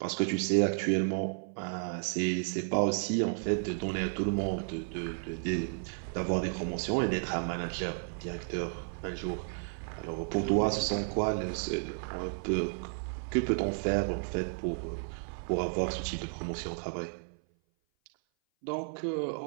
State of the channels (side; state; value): left; silent; 56 dB below the other